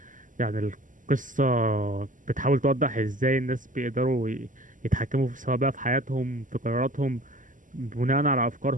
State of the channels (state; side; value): late; left; 0.38 ms